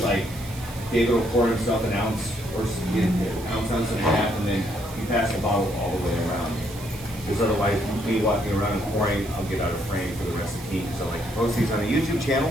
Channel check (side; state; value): right; noise; hiss, 16 dB below the sound